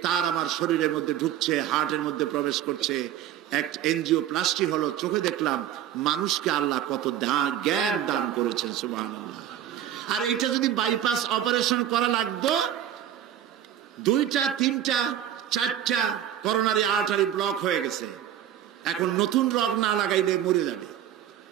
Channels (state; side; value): quieter; left; 11.0 dB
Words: তার আমার শরীরের মধ্যে ঢুকছে, হার্টের মধ্যে প্রবেশ করছে। এক এনজিওপ্লাস্টি হলো। চোখে দেখলাম মানুষকে আল্লাহ কত জ্ঞান দান করেছেন, সুবহানাল্লাহ। আর এটা যদি বাইপাস অপারেশন করা লাগতো, 2টা 3টা 4টা করোনারি আর্টারি ব্লক হয়ে গেছে। এখন নতুন রগ না লাগাইলে মরে যাবে।